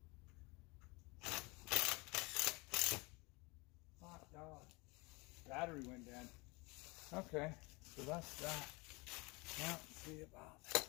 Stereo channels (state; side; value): quieter; right; 26.5 dB